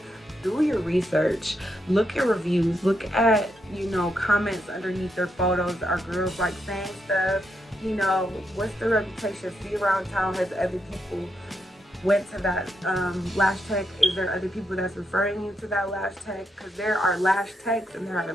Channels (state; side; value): normal; both; correlation 0.81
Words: do your research. Look at reviews. Look at, you know, comments underneath their photos. Are girls like saying stuff? You know, what's the reputation? See around town, has other people went to that lash tech? Is there other people that's referring you to that lash tech? Because there are lash techs and there are